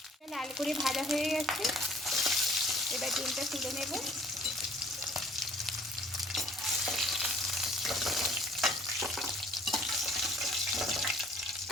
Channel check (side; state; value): both; normal; correlation 0.55